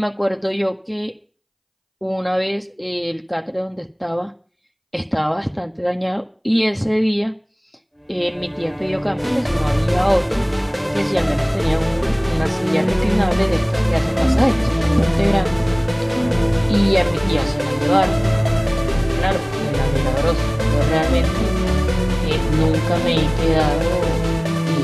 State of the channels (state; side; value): identical; both; correlation 1.00